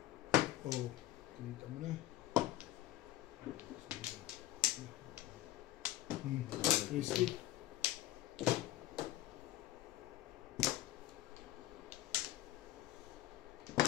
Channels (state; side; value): quieter; right; 14.8 dB